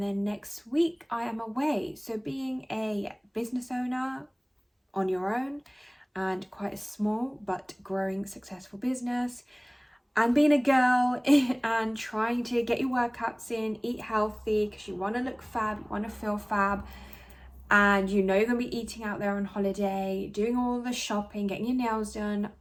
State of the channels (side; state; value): both; identical; correlation 1.00